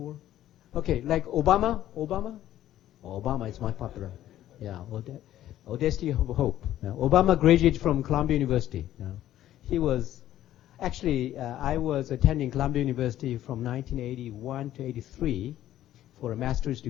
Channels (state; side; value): quieter; right; 12.9 dB